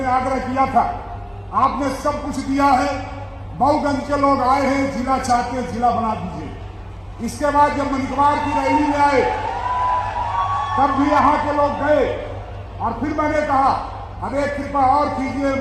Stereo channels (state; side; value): identical; both; correlation 1.00